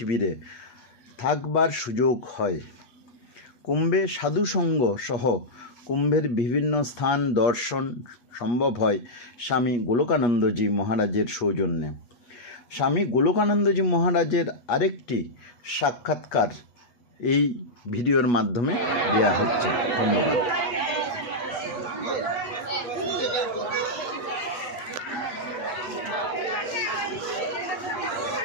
থাকবার সুযোগ হয়। কুম্ভে সাধুসঙ্গ সহ কুম্ভের বিভিন্ন স্থান দর্শন সম্ভব হয় স্বামী গোলকানন্দজি মহারাজের সৌজন্যে। স্বামী গোলকানন্দজি মহারাজের আরেকটি সাক্ষাৎকার এই ভিডিওর মাধ্যমে দেওয়া হচ্ছে। ধন্যবাদ।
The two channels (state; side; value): late; right; 8.2 ms